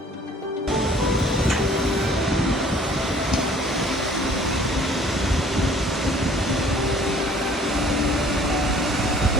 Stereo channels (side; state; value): both; normal; correlation 0.54